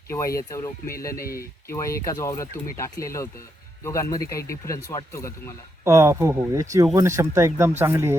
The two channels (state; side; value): normal; both; correlation 0.80